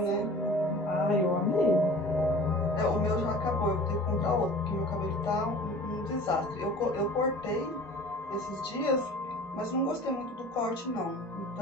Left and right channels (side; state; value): both; normal; correlation 0.42